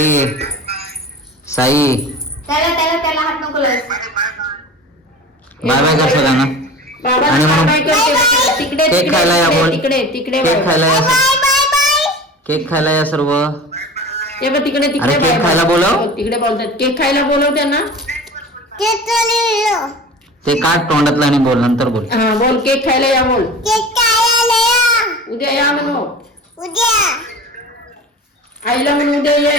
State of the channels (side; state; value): both; normal; correlation 0.37